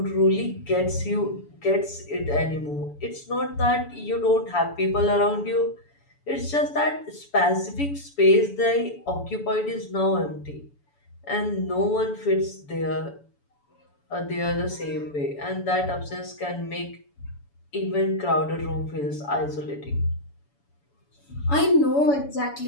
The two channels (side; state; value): right; late; 7.0 ms